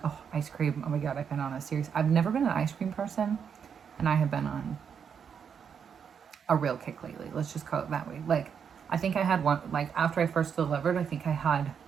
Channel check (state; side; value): quieter; left; 7.2 dB